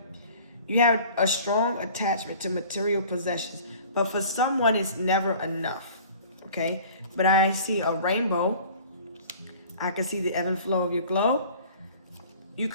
You have a strong attachment to material possessions, but for someone it's never enough, okay? But I see a rainbow. I can see the ebb and flow of your glow. You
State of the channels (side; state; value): both; inverted; correlation -0.47